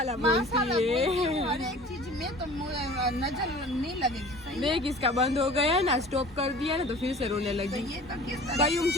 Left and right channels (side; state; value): both; normal; correlation 0.43